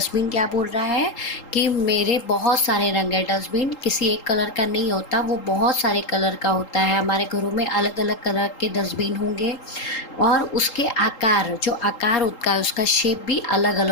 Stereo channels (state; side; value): late; right; 3.8 ms